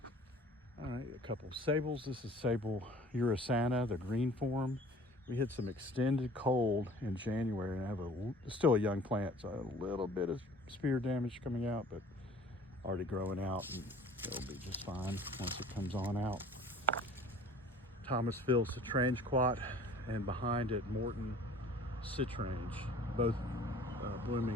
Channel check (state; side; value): normal; both; correlation 0.49